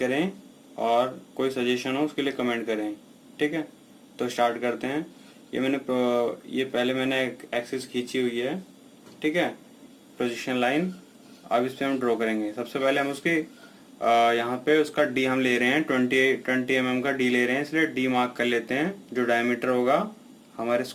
और कोई सजेशन हो उसके लिए कमेंट करें। ठीक है, तो स्टार्ट करते हैं। ये पहले मैंने एक एक्सिस खींची हुई है। ठीक है, पोजीशन लाइन। अब इस पे हम ड्रॉ करेंगे। सबसे पहले हम उसके यहाँ पे उसका डी हम ले रहे हैं, 20 mm का डी ले रहे हैं, इसलिए डी मार्क कर लेते हैं। जो डायमीटर होगा हमारे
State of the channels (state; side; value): identical; both; correlation 1.00